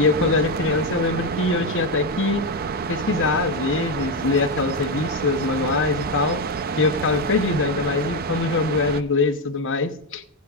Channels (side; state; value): both; normal; correlation 0.08